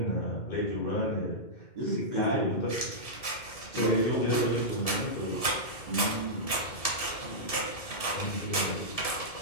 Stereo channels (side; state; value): right; late; 1.7 ms